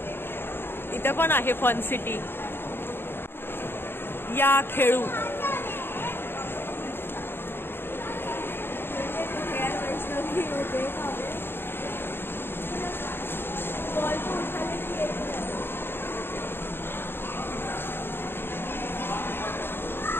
इथं पण आहे फन सिटी. या खेळू.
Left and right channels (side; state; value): right; late; 0.11 ms